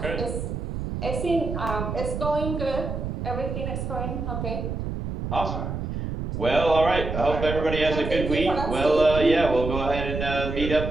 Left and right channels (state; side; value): noise; right; rumble, 4 dB below the sound